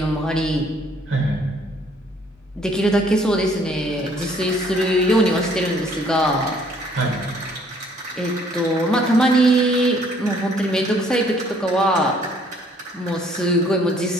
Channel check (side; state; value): both; normal; correlation 0.61